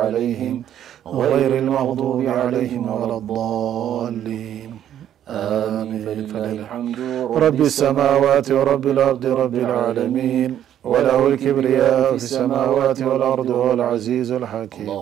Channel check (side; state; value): left; quieter; 10.7 dB